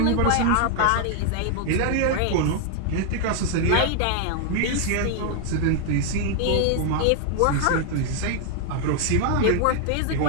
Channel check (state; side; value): different; both; correlation 0.00